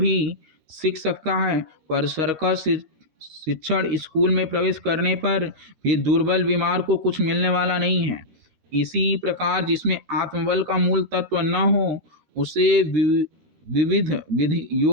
सीख सकता है, पर सर्कस शिक्षण स्कूल में प्रवेश करने पर भी दुर्बल बीमार को कुछ मिलने वाला नहीं है। इसी प्रकार जिसमें आत्मबल का मूल तत्व न हो, उसे विविध विधि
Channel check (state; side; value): late; left; 13 ms